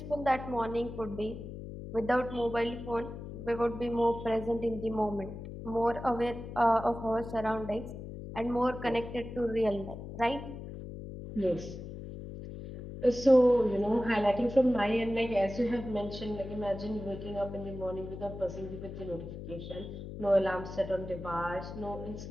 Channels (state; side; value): noise; left; hum, 10 dB below the sound